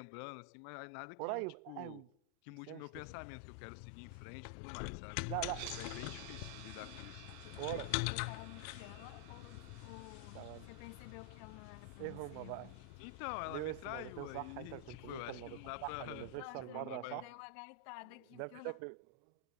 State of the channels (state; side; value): different; both; correlation -0.01